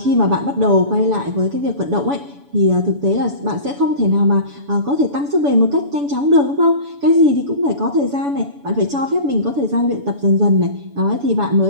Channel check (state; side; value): late; left; 7.0 ms